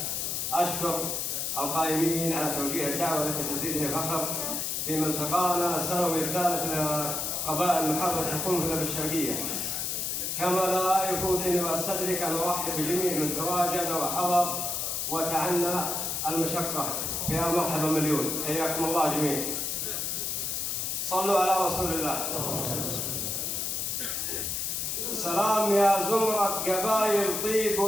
أشكر القائمين على توجيه الدعوة التي تزيدني فخر في ملتقانا السنوي الثالث لقبائل المحافظة القنفذة بالشرقية. كما لا يفوتني واستدرك أن أرحب بجميع من تواجد وحضر وتعنى المشقة. يا مرحبا مليون، حياكم الله جميعا. صلوا على رسول الله. سلام يا زمرة قبائل طيب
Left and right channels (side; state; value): left; noise; hiss, 1 dB below the sound